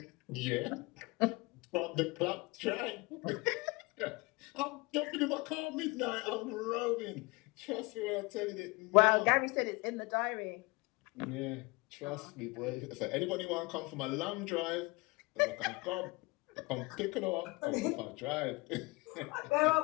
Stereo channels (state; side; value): quieter; right; 25.2 dB